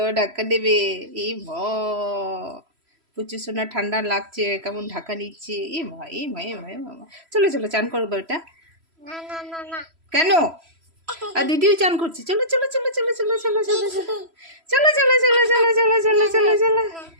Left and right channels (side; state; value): left; late; 3.0 ms